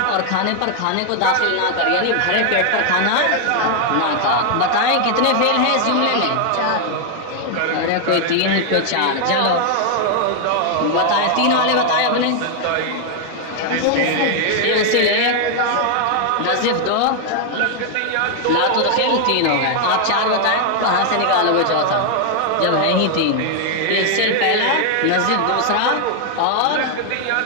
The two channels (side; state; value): both; different; correlation 0.00